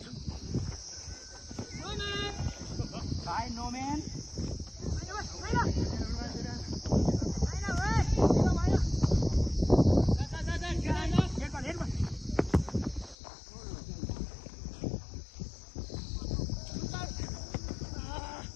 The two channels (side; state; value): right; drops out; at 13.2 s